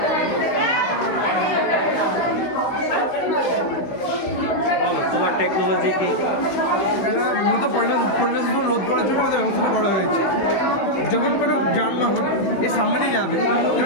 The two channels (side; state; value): right; late; 16 ms